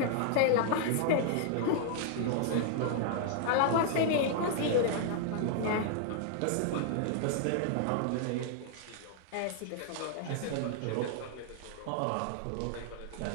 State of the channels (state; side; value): different; both; correlation 0.00